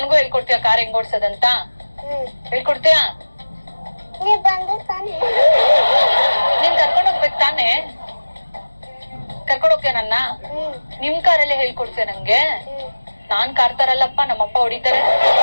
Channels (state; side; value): inverted; both; correlation -1.00